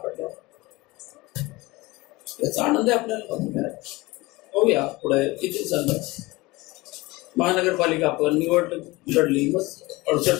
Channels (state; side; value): quieter; right; 21.5 dB